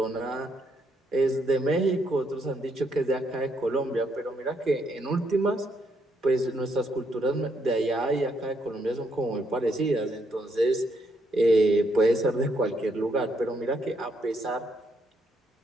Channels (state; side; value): normal; both; correlation 0.75